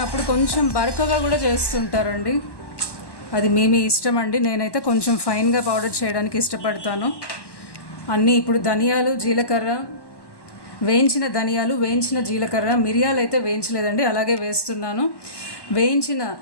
కొంచెం బరకగా కూడా చేస్తుంటారండి. అది మీ ఇష్టం అండి. నేనైతే కొంచెం ఫైన్గా పౌడర్ చేయడానికి ఇష్టపడతాను. అన్నీ ఇప్పుడు ధనియాలు, జీలకర్ర, వేయించిన ధనియాలు, వేయించిన జీలకర్ర, మిరియాలు అయితే వేయించలేదండి, అలాగే వేస్తున్నాను. వేయించిన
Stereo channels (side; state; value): right; late; 1.1 ms